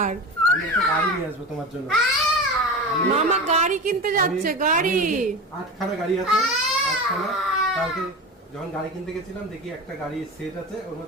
আমি একটা গাড়ি নিয়ে আসবো তোমার জন্য। মামা গাড়ি কিনতে যাচ্ছে। গাড়ি 8খানা গাড়ি আছে, 8খানা। কালকে যখন গাড়ি কিনতে গেছিলাম দেখি একটা গাড়ি সেট আছে, ওর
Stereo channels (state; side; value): normal; both; correlation 0.28